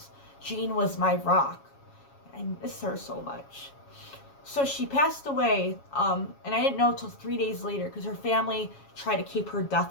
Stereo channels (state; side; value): late; right; 7.2 ms